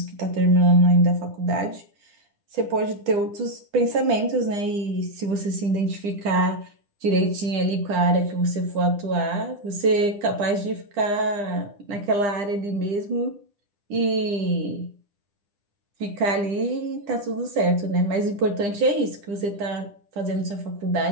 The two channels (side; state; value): left; late; 10 ms